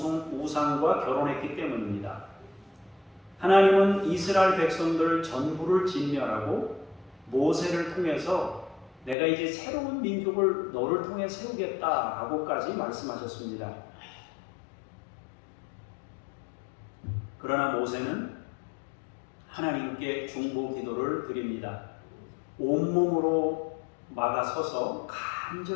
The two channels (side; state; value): right; drops out; at 9.2 s